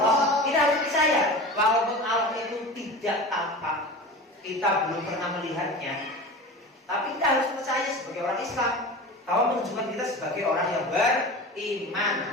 Kita harus percaya walaupun Allah itu tidak tampak, kita belum pernah melihatnya, tapi kita harus percaya sebagai orang Islam. Kalau menunjukkan kita sebagai orang yang beriman.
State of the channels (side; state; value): both; normal; correlation 0.33